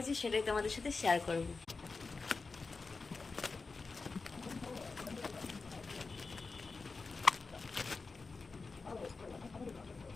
সেটাই তোমাদের সাথে শেয়ার করবো।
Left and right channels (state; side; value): quieter; right; 4.2 dB